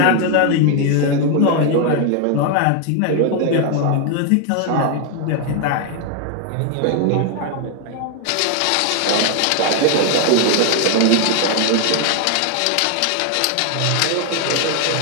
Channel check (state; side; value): different; both; correlation 0.01